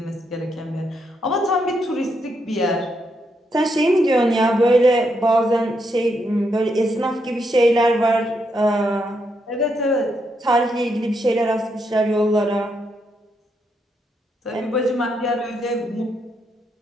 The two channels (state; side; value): normal; both; correlation 0.79